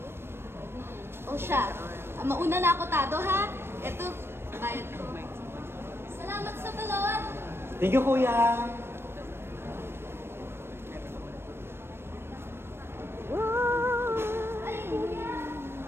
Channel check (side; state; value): left; late; 0.12 ms